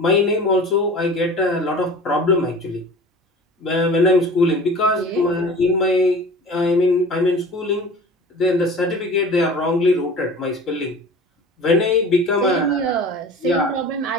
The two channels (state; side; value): normal; both; correlation 0.40